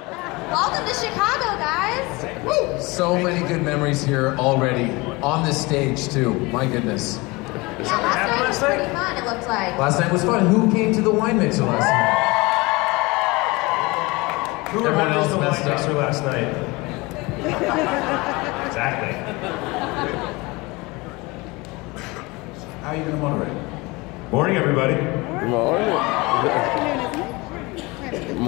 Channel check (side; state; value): right; quieter; 24.1 dB